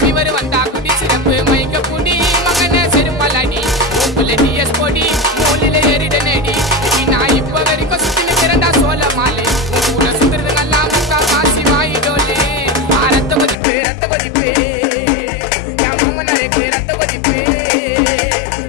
வந்தா குடி சிறப்பு மயக்க குடி மகன செருப்பலாடி உப்புல டிஎஸ் பொடி மூலில ஏறிட நேடி நான் இப்ப வரைக்கும் சுத்தின திறந்தா சோழ மாலை ஊரை சுத்துறது நல்லா முக்கா காசி வாயிடோலே ரத்த கொதிப்பு என் மாமனாருக்கு ரத்த கொதிப்பு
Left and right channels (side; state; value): right; drops out; at 13.6 s